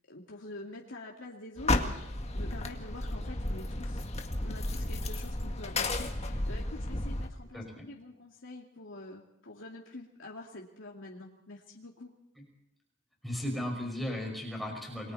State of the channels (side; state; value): both; normal; correlation 0.62